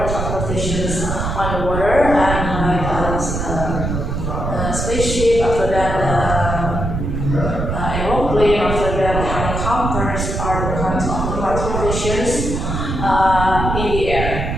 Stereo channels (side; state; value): right; noise; rumble, 3 dB below the sound